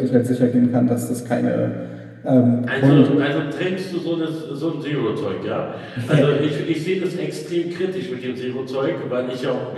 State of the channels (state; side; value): identical; both; correlation 1.00